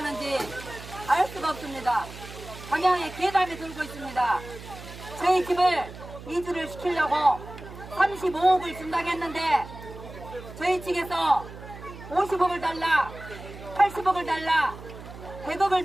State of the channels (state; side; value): noise; right; hum, 14 dB below the sound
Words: 알 수가 없습니다. 방향에 괴담이 돌고 있습니다. 저희 집을 이주를 시키려고 35억을 준다고 했는데 저희 측에서 50억을 달라, 80억을 달라,